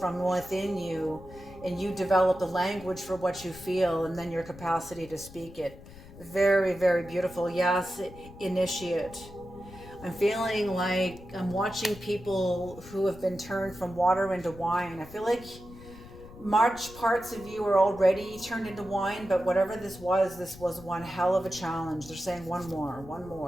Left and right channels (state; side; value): noise; left; rumble, 18 dB below the sound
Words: within you, and you develop the language for what you feel, and then your capacity to speak it. Very, very beautiful. Yes, initiate. I'm feeling like I'm watching people who have been turned from water into wine. I feel like March parts of you are already turned into wine, but whatever this was one hell of a challenge. They're saying one